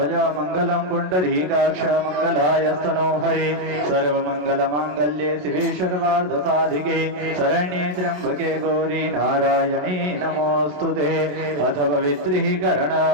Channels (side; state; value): left; late; 27 ms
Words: मंगलम पुंडरीकाक्ष मंगलायस्तनो हरे सर्वमंगल मांगल्ये शिवे सर्वार्थ साधिके शरण्ये त्र्यंबके गौरी नारायणी नमोस्तुते। अथ